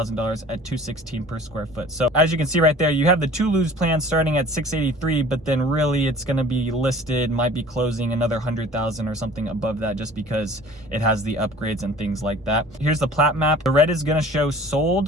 at $216 per square foot. So as you can see right there, you have the Toulouse plan starting at $683,000, but then really it's going to be listed, might be closing another $100,000 or something above that, just because it has the upgrades and things like that. Here's the plat map. The red is going to show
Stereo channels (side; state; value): both; normal; correlation 0.46